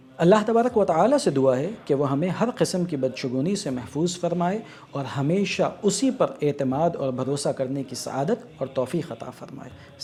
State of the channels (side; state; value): both; identical; correlation 1.00